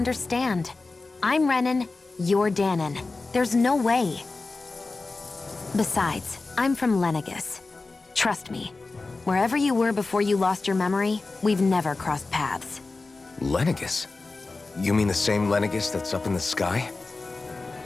I'm Renan, you're Danon. There's no way. Besides, I'm from Lenegis. Trust me, wherever you were before you lost your memory, we've never crossed paths. Lenegis? You mean the same Lenegis that's up in the sky?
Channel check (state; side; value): quieter; right; 3.6 dB